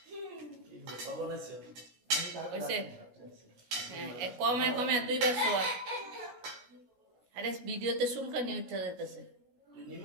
কখন আসছো হয়েছে হ্যাঁ কমে কমে 2 বার শোয়া আরে ভিডিওতে চুলকানি উঠে যেতেছে তুই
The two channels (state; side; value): late; left; 16 ms